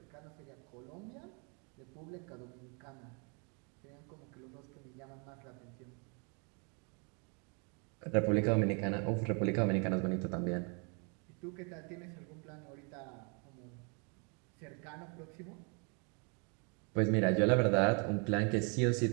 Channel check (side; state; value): left; quieter; 35.7 dB